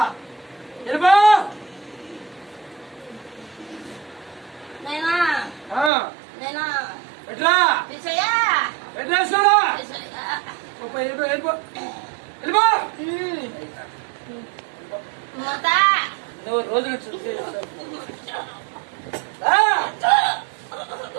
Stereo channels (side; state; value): left; drops out; at 5.9 s